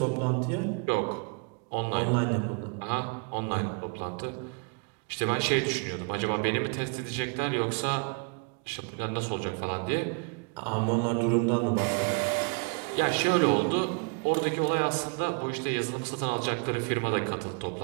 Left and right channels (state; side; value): quieter; left; 35.7 dB